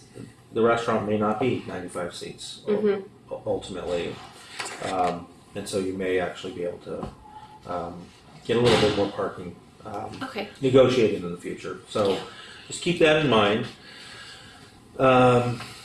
the restaurant may not be 95 seats ultimately, and so you may actually be able to get a little bit more parking Okay. negotiated in the future. So just keep that in mind.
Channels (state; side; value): identical; both; correlation 1.00